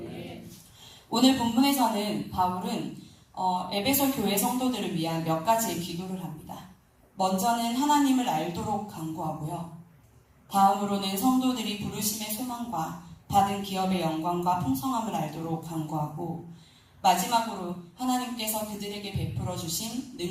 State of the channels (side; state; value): both; identical; correlation 1.00